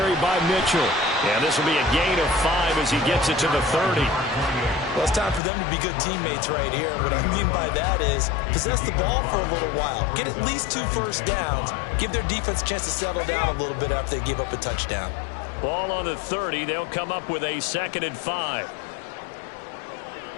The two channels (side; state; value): right; drops out; at 5.4 s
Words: by Mitchell. And this will be a gain of 5 as he gets it to the 30. Well, it's time for them to be good teammates right here. What I mean by that is possess the ball for a little while. Get at least 2 first downs. Give their defense a chance to settle down a little bit after they give up a touchdown. Ball on the 30. They'll come up with a 2nd and 5.